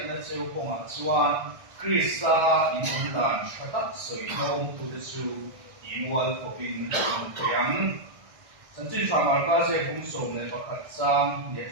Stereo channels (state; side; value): late; left; 1.6 ms